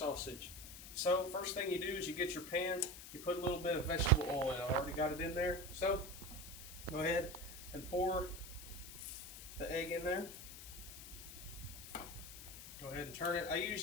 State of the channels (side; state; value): left; noise; hiss, 13 dB below the sound